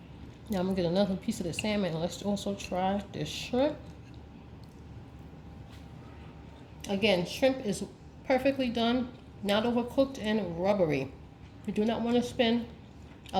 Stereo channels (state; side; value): identical; both; correlation 1.00